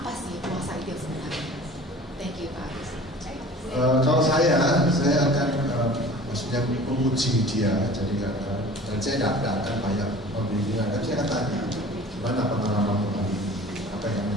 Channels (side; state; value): both; normal; correlation 0.44